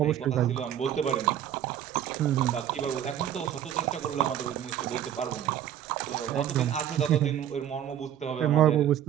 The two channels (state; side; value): quieter; left; 10.7 dB